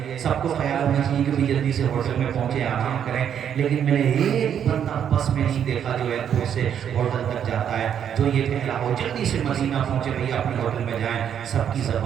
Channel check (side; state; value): left; quieter; 8.8 dB